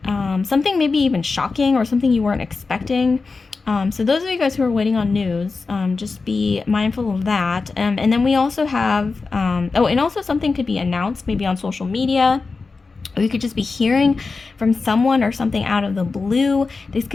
something maybe even shocking or something you weren't expecting. So those of you guys who are waiting on news, just be mindful of that. And then we also have, oh, and also something could be announced maybe on social media. Or you could just be hearing from someone or something out of the blue. This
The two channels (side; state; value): right; quieter; 4.2 dB